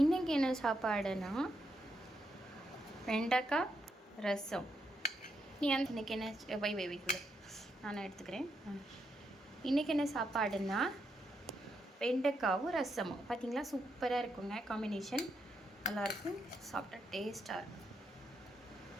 இன்னைக்கு என்ன சாப்பாடுனா வெண்டைக்காய் ரசம். நீ அந்த இன்னைக்கு என்ன வைக்குள்ள நான் எடுத்துக்கிறேன். இன்றைக்கி என்ன சாப்பாடுன்னா வெண்டைக்காவும் ரசமும். பார்த்தீங்களா, சூப்பராக இருக்குங்க. காம்பினேஷன் நல்லாயிருக்கும், சாப்பிட்டா டேஸ்ட்டாக இருக்கும்.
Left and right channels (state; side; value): normal; both; correlation 0.81